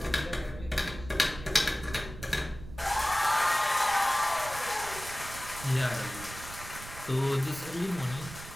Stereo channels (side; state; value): right; noise; rumble, 13 dB below the sound